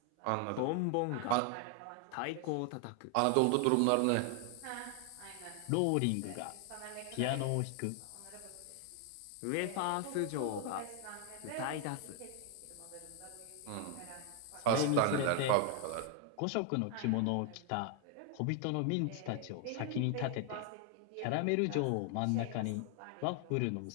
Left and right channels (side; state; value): both; different; correlation 0.00